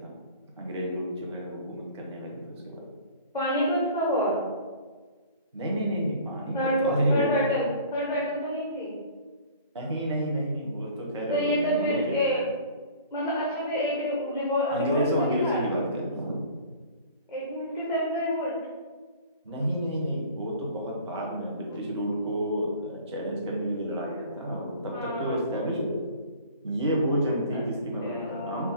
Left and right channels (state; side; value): inverted; both; correlation -0.46